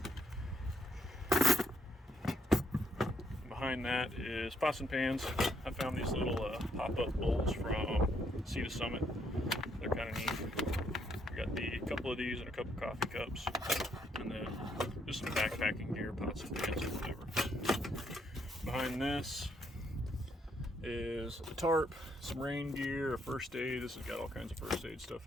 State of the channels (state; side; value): normal; both; correlation 0.73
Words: Behind that is pots and pans. I found these little pop-up bowls from Sea to Summit. They're kind of neat. We got a couple of these and a couple coffee cups, and then just some backpacking gear, pots and pans or whatever. Behind this is a tarp, some rain gear, a first aid. This has got all kinds of first aid stuff